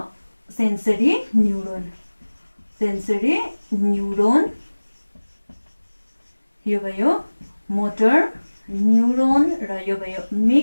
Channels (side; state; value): both; inverted; correlation -1.00